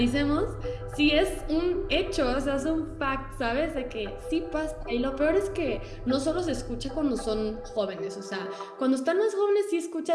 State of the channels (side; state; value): both; identical; correlation 1.00